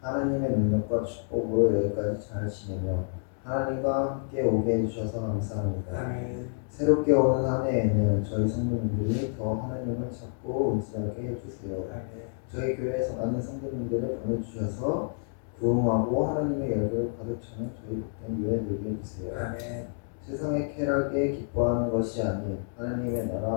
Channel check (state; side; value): silent; right; digital silence